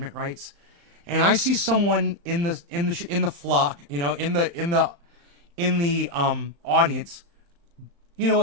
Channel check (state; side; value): late; left; 35 ms